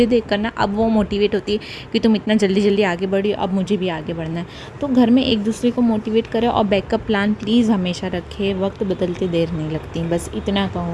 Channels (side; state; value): both; identical; correlation 1.00